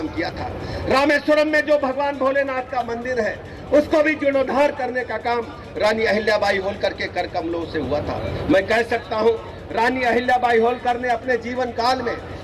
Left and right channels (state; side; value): identical; both; correlation 1.00